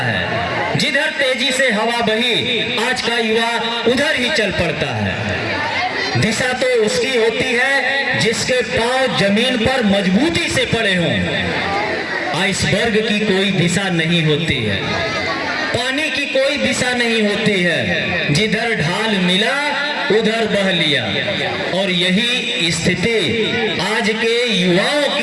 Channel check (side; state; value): both; identical; correlation 1.00